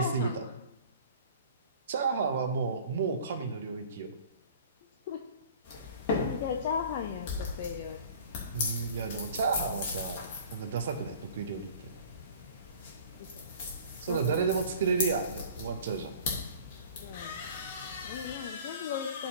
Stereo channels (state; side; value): inverted; both; correlation -0.45